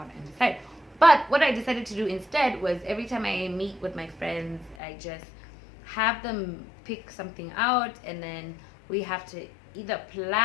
and decide. But what I decided to do instead was, every time I meet with my friends, I just have them pick something out, and then we have to either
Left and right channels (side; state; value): right; drops out; at 4.8 s